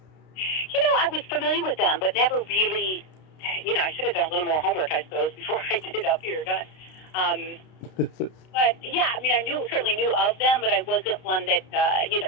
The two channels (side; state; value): right; late; 32 ms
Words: I was familiar with them, but never really. I should have done a little more homework, I suppose, before I did up here. But yeah, I mean, I certainly knew of them, but I wasn't one that